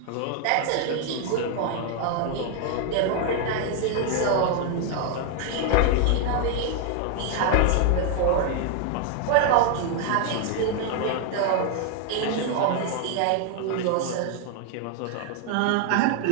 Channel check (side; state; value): both; different; correlation 0.00